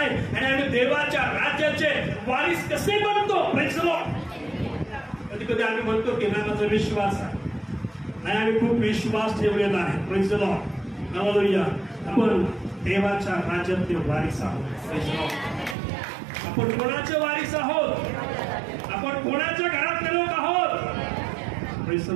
आणि आम्ही देवाच्या राज्याचे वारीस कसे बनतो. Praise the Lord. कधी कधी आम्ही म्हणतो की नाही माझा विश्वास आहे, नाही आम्ही खूप विश्वास ठेवलेला आहे. Praise the lord. हालेलुया. आपण देवाच्या राज्यातले वारीस आहोत. Praise the Lord. आपण कोणाचे वारीस आहोत? आपण कोणाच्या घरातले लोक आहोत? Praise the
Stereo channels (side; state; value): left; drops out; at 15.8 s